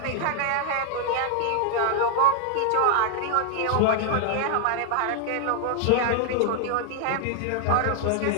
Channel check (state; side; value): different; both; correlation 0.00